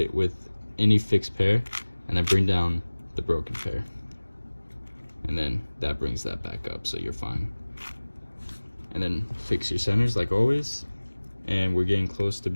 with any fixed pair, and then bring down the broken pair. And then that brings that back up, so you're fine. And then fix your centers like always. And we're getting close to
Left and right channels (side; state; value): both; inverted; correlation -1.00